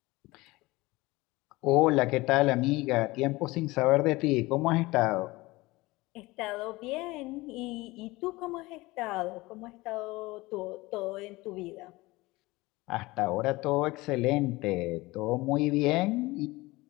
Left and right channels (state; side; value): quieter; right; 21.1 dB